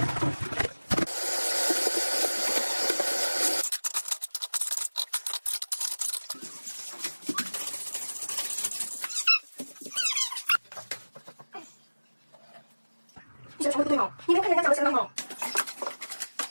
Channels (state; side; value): inverted; both; correlation -1.00